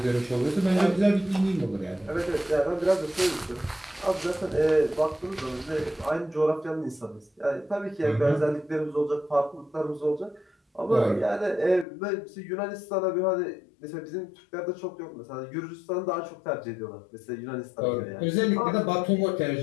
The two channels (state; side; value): drops out; right; at 11.9 s